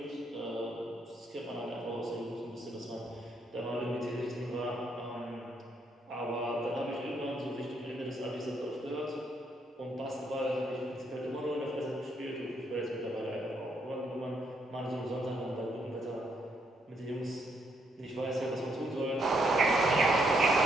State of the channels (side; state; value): both; normal; correlation 0.74